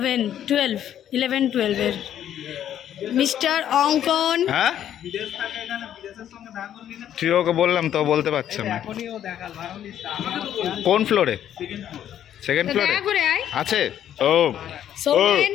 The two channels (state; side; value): quieter; right; 10.6 dB